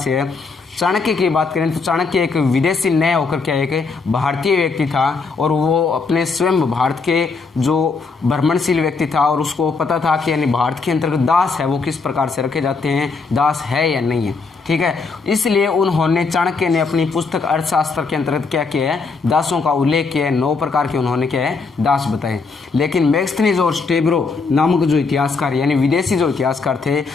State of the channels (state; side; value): quieter; right; 4.5 dB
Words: है। चाणक्य की बात करें तो चाणक्य एक विदेशी न होकर क्या एक भारतीय व्यक्ति था, और वो अपने स्वयं भारत के जो भ्रमणशील व्यक्ति था, और उसको पता था कि यानी भारत के अंतर्गत दास है वो किस प्रकार से रखे जाते हैं, दास है या नहीं है। ठीक है, इसलिए उन्होंने, चाणक्य ने अपनी पुस्तक अर्थशास्त्र के अंतर्गत क्या किया है, दासों का उल्लेख किया है। 9 प्रकार के उन्होंने क्या है, दास बताए। लेकिन मेगस्थनीज और स्टेब्रो नामक जो इतिहासकार, यानी विदेशी जो इतिहासकार थे,